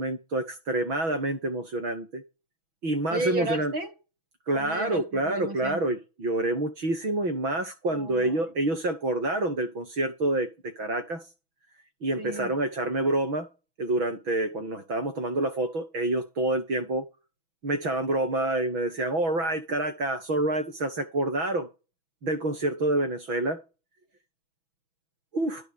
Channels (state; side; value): late; left; 6.1 ms